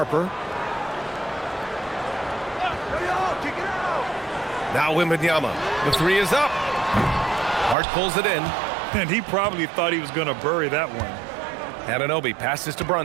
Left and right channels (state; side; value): drops out; left; at 7.8 s